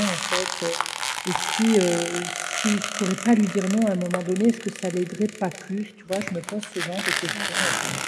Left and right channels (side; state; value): both; identical; correlation 1.00